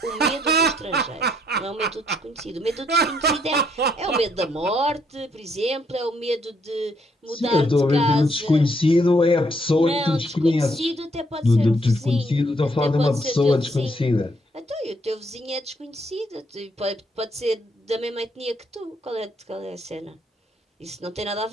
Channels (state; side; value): normal; both; correlation 0.71